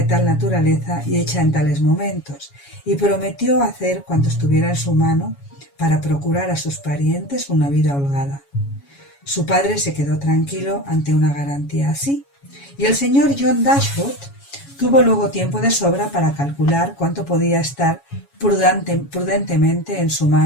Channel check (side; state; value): right; late; 7.2 ms